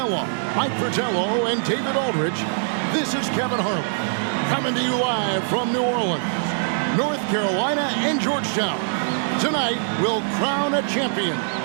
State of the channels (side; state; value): left; silent; 63 dB below the other